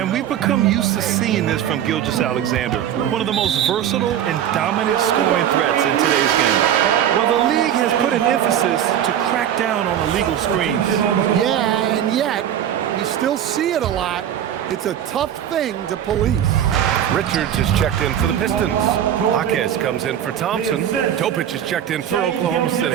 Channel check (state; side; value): quieter; left; 10.2 dB